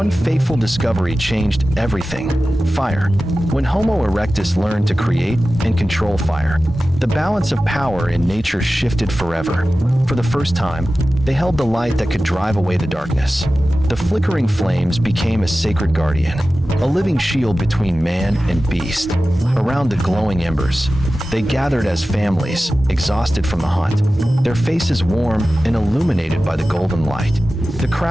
fateful discovery changed everything: fire. When Homo erectus learned to create and control fire, the balance of power in nature shifted forever. For the first time, they held the light that could drive away the darkness. The flickering flames became a sacred guardian, a living shield between man and beast. Around the glowing embers, they gathered as families, exhausted from the hunt, their faces warm and illuminated by the golden light. The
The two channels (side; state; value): both; normal; correlation 0.95